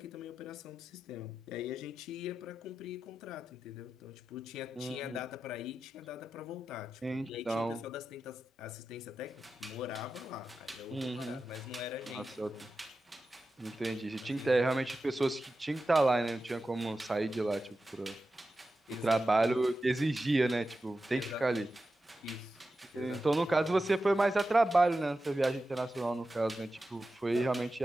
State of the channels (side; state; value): both; normal; correlation 0.92